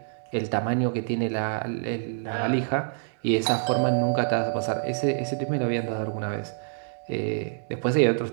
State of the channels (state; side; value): silent; left; digital silence